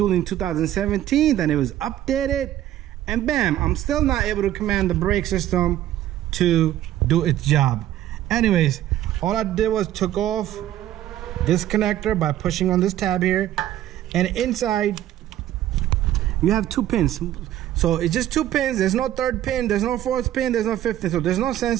in 2017. Then it was updated. And bam, I'm still not able to command the brake system to do its job. Anyways, all I did was took off this connector by pushing on this tab here. And inside, you have two pins. So it's just two pins. There's no third pin. There's no fourth pin. There's no fifth pin. So there's no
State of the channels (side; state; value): left; quieter; 12.9 dB